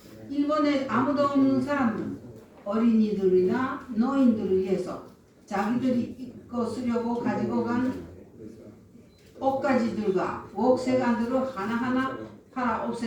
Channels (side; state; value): both; identical; correlation 1.00